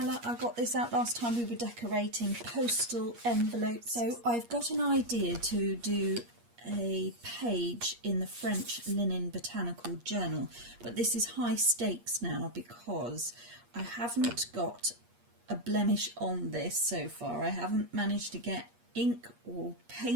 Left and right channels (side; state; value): left; late; 8.5 ms